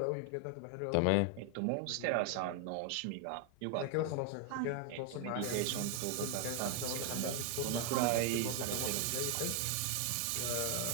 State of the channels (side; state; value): both; different; correlation 0.01